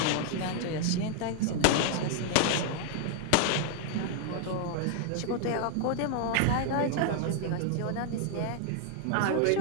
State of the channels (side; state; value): both; different; correlation 0.00